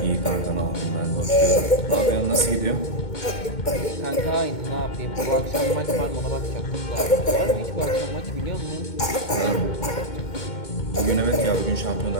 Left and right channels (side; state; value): right; late; 2.2 ms